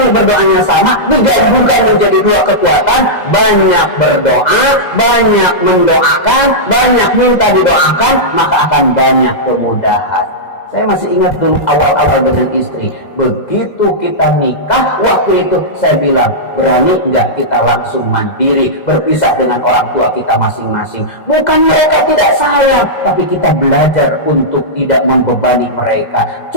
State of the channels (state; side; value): late; right; 2.0 ms